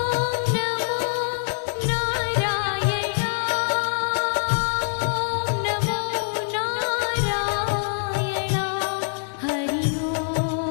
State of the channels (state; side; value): silent; right; 62 dB below the other